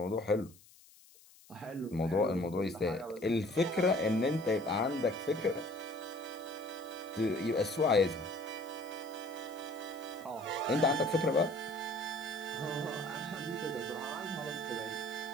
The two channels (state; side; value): noise; left; hiss, 24 dB below the sound